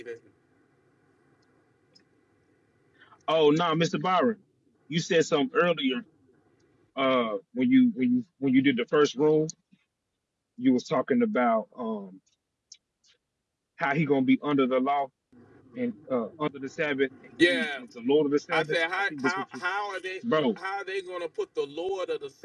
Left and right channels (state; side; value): identical; both; correlation 1.00